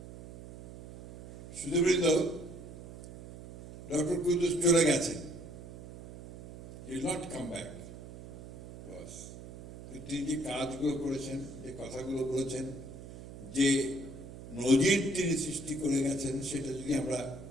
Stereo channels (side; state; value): right; noise; hum, 14 dB below the sound